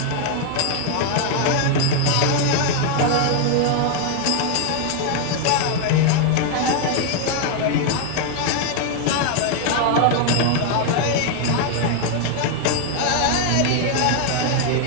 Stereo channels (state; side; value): different; both; correlation 0.00